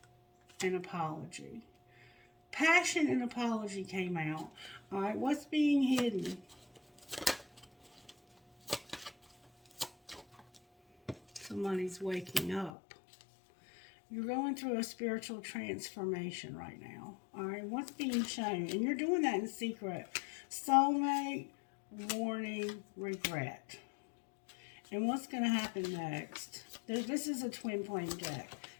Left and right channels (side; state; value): right; drops out; at 12.7 s